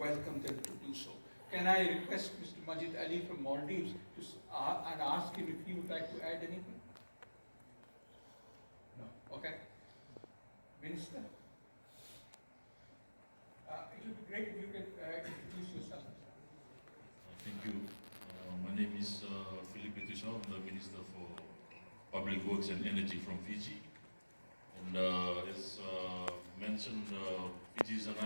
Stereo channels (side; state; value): both; inverted; correlation -1.00